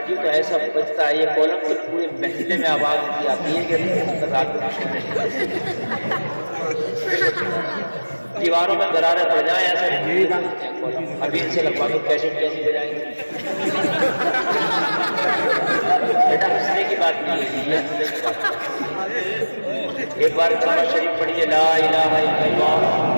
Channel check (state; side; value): inverted; both; correlation -1.00